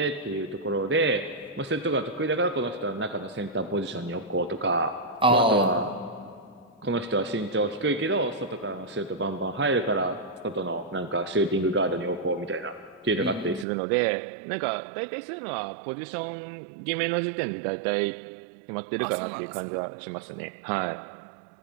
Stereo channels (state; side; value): drops out; left; at 13.7 s